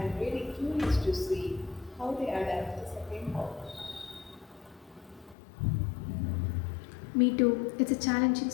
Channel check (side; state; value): right; drops out; at 5.4 s